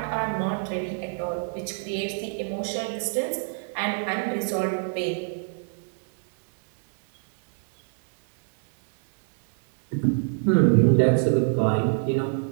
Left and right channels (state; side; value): silent; left; digital silence